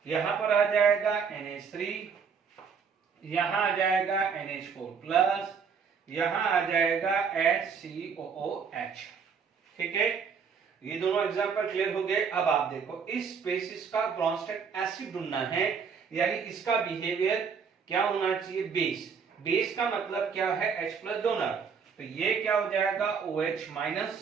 यहां पर आ जाएगा NH3, यहां आ जाएगा NH4 प्लस, यहां आ जाएगा HCOOH। ठीक है, ये दोनों एग्जांपल क्लियर हो गए। अब आप देखो इस स्पेसिस का ब्रॉन्स्टेड एसिड ढूंढना है, यानी इसका बिहेवियर क्या होना चाहिए, बेस। बेस का मतलब क्या है, H प्लस डोनर, तो ये क्या हो जाएगा OH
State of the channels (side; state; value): left; quieter; 6.2 dB